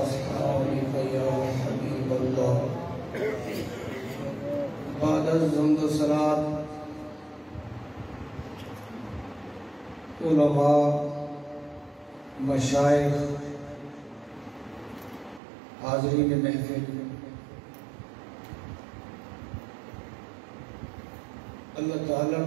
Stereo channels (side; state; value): left; drops out; at 15.4 s